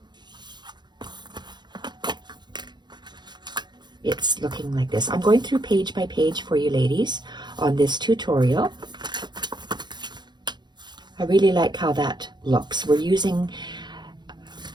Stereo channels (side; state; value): left; late; 0.21 ms